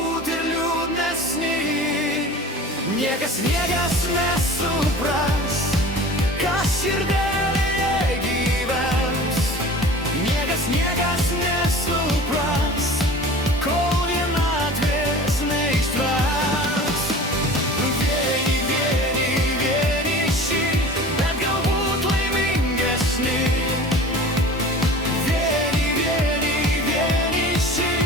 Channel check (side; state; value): both; normal; correlation 0.40